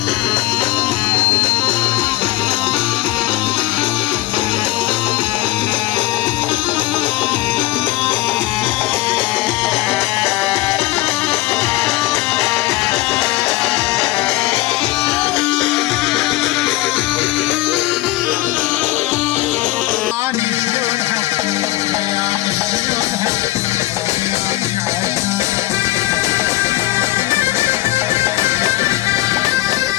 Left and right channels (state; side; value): quieter; right; 17.6 dB